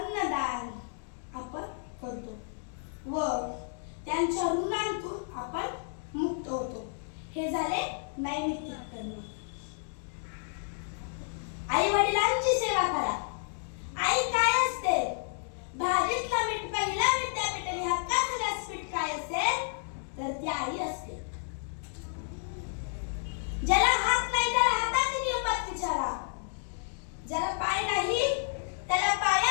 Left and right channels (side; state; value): right; silent; digital silence